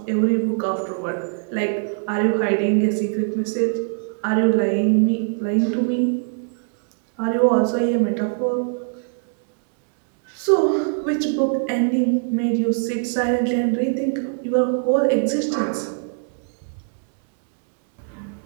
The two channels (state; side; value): silent; left; digital silence